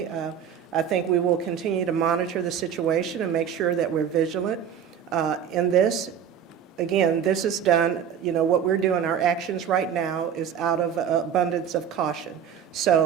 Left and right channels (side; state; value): left; quieter; 8.3 dB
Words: I think we will continue to monitor the situation and make sure that we're vigilant in this. Again, this is done, you know, what we're doing, our actions right now is out of abundance of caution.